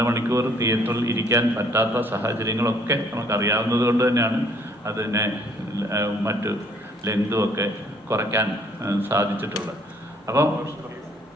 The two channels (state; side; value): normal; both; correlation 0.62